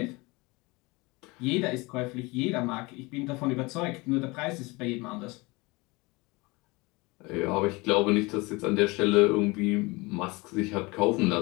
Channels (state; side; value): quieter; right; 24.5 dB